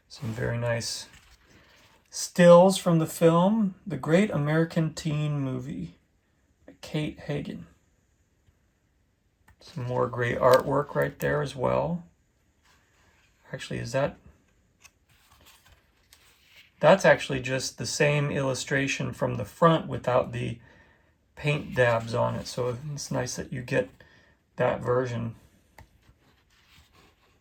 Some very nice stills from the film, The Great American Teen Movie, by Kate Hagen. Some more great artwork right there as well. Actually, that's actually just the same illustration from the front without the paint dabs on it. So it's nice that you get that version.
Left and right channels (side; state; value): both; identical; correlation 1.00